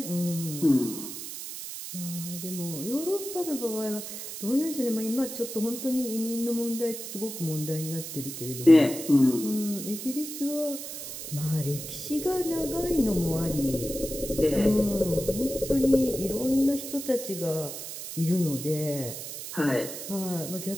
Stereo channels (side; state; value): right; noise; hiss, 8 dB below the sound